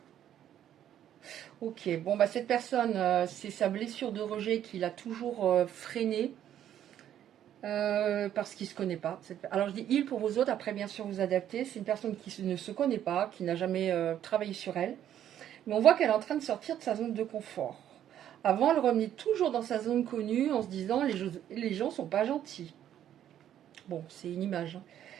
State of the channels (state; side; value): quieter; left; 10.8 dB